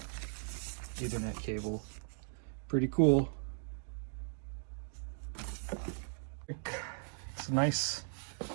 Ethernet cable. Pretty cool. It's a nice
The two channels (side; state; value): left; silent; digital silence